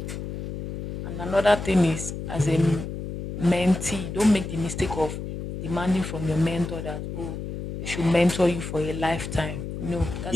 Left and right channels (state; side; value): noise; left; hum, 7 dB below the sound